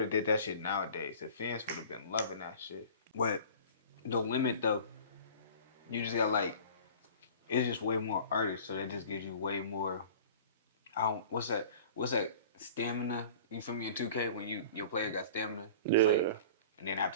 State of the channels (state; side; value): inverted; both; correlation -0.42